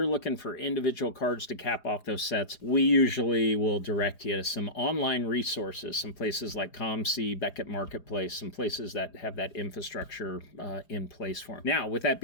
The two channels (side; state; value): right; late; 4.9 ms